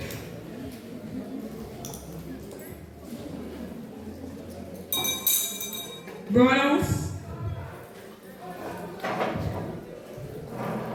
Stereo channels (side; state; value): both; identical; correlation 1.00